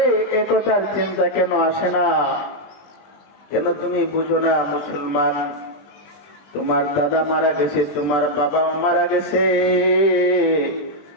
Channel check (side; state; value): right; late; 20 ms